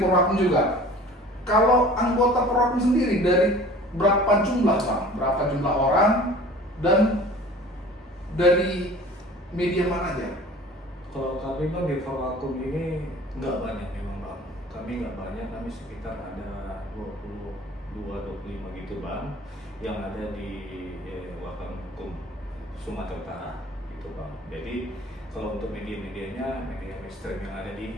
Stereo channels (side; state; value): both; normal; correlation 0.45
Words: juga. Kalau anggota Perwakum sendiri dari berapa jumlah Bang? Berapa jumlah orang dan dari media mana aja? Kalau kami Bang di Perwakum ini nggak banyak memang Bang. Kami nggak banyak, kami sekitar ada 22-25 gitu Bang, yang ada di Wartawan Hukum Sumatera Utara gitu Bang. Jadi kalau untuk media-medianya, media mainstream yang ada